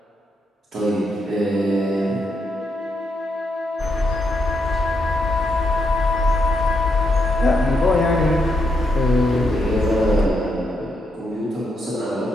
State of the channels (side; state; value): both; normal; correlation 0.79